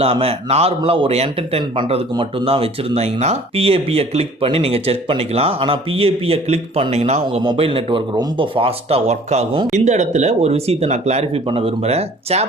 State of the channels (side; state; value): both; normal; correlation 0.51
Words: நார்மலா ஒரு என்டர்டெயின் பண்றதுக்கு மட்டும் தான் வச்சிருந்தீங்கன்னா PAP-ய கிளிக் பண்ணி நீங்க செக் பண்ணிக்கலாம். ஆனா PAP-ய கிளிக் பண்ணீங்கன்னா உங்க மொபைல் நெட்வொர்க் ரொம்ப ஃபாஸ்டா ஒர்க் ஆகும். இந்த இடத்துல ஒரு விஷயத்தை நான் கிளாரிஃபை பண்ண விரும்புறேன்.